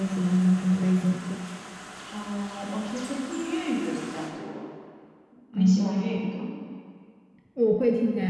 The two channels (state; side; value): identical; both; correlation 1.00